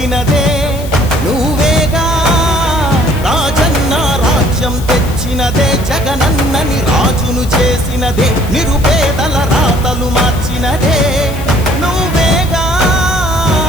నువ్వేగా. రాజన్న రాజ్యం తెచ్చినదే, జగనన్నని రాజును చేసినదే, నిరుపేదల రాతలు మార్చినదే నువ్వేగా.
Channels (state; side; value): noise; left; hiss, 16 dB below the sound